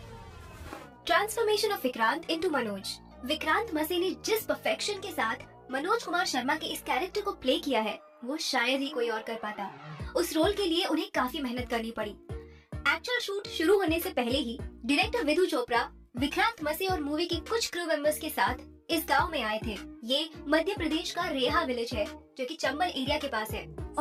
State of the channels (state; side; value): identical; both; correlation 1.00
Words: Transformation of Vikrant into Manoj. Vikrant मसे ने जिस परफेक्शन के साथ मनोज कुमार शर्मा के इस कैरेक्टर को प्ले किया है वो शायद ही कोई और कर पाता। उस रोल के लिए उन्हें काफी मेहनत करनी पड़ी। एक्चुअल शूट शुरू होने से पहले ही डायरेक्टर विधु चोपड़ा विक्रांत मसे और मूवी के कुछ क्रू मेंबर्स के साथ इस गांव में आए थे। ये मध्य प्रदेश का रेहा विलेज है जो कि चंबल एरिया के पास है